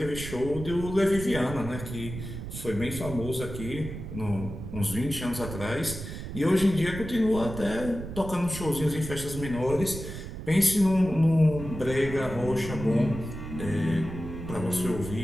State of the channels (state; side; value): noise; right; rumble, 9 dB below the sound